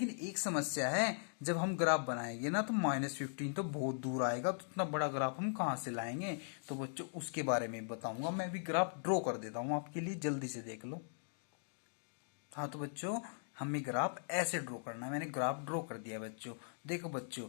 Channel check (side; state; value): right; silent; digital silence